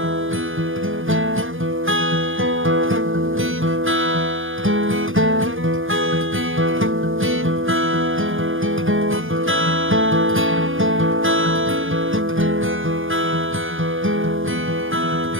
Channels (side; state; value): left; late; 0.59 ms